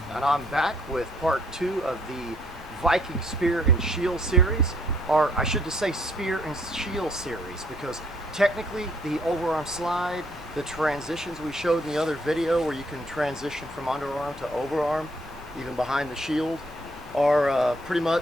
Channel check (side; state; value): both; normal; correlation 0.66